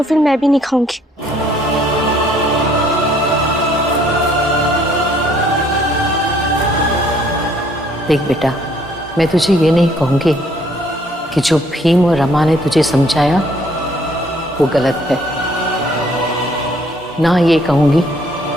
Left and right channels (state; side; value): normal; both; correlation 0.63